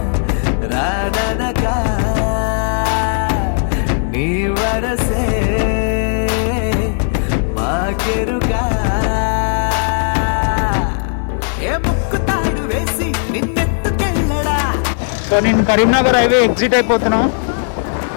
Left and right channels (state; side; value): silent; right; digital silence